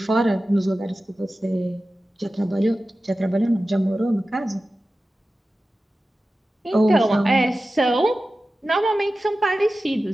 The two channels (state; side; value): normal; both; correlation 0.94